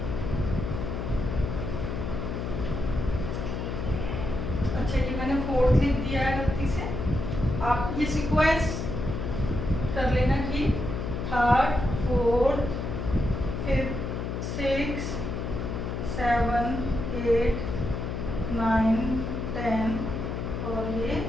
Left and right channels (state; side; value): noise; left; hum, 3 dB below the sound